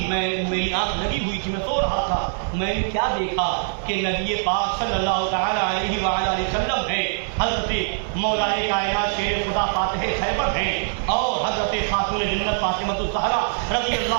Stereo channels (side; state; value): left; silent; digital silence